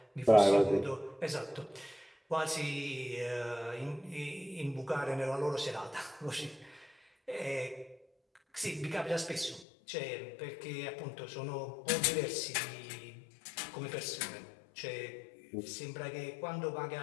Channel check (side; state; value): right; drops out; at 9.7 s